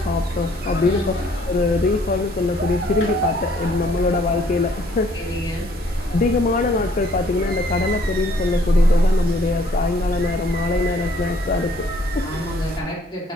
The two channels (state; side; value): normal; both; correlation 0.62